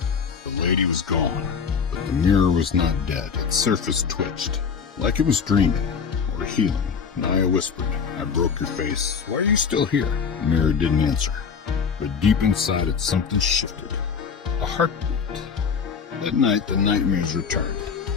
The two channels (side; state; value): right; quieter; 6.2 dB